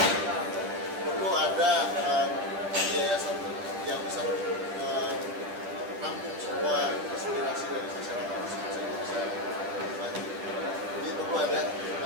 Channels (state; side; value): late; left; 10 ms